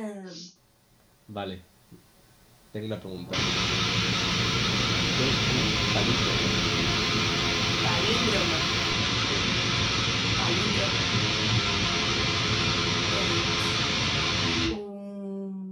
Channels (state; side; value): identical; both; correlation 1.00